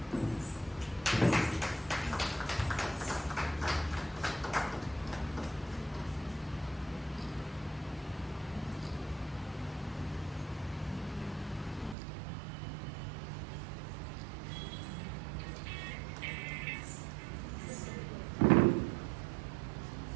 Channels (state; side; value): drops out; left; at 12.0 s